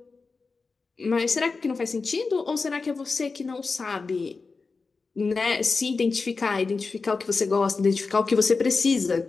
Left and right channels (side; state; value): right; quieter; 4.3 dB